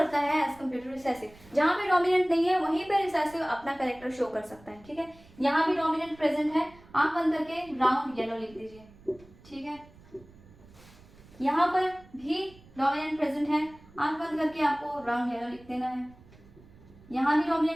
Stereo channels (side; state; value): right; noise; rumble, 24 dB below the sound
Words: है एज कम्पेयर टू रिसेसिव। जहां पे डोमिनेंट नहीं है वहीं पे रिसेसिव अपना कैरेक्टर शो कर सकता है, ठीक है। यहाँ भी डोमिनेंट प्रेजेंट है, आंख बंद करके राउंड येलो लिख दीजिए, ठीक है। यहाँ पर भी डोमिनेंट प्रेजेंट है, आंख बंद करके आपको राउंड येलो लिख देना है। यहाँ भी